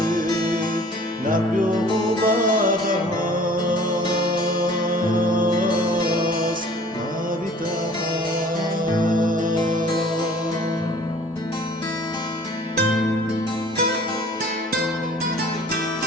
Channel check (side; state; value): both; normal; correlation 0.50